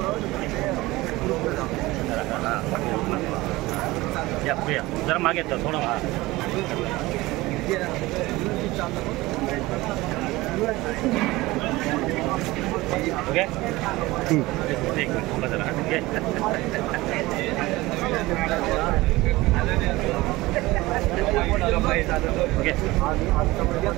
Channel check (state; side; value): quieter; left; 19.8 dB